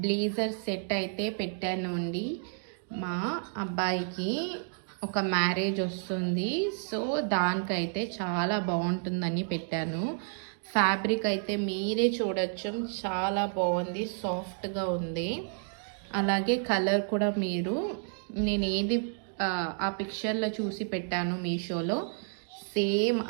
బ్లేజర్ సెట్ అయితే పెట్టాను అండి. మా అబ్బాయికి ఒక మ్యారేజ్ వస్తుంది, సో దానికైతే చాలా బాగుంటుందని పెట్టాను. ఫ్యాబ్రిక్ అయితే మీరే చూడొచ్చు, చాలా బాగుంది, సాఫ్ట్గా ఉంది. అలాగే కలర్ కూడా నేను ఏది ఆ పిక్చర్లో చూసి పెట్టాను మీషోలో, సేమ్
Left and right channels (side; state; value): left; silent; 57 dB below the other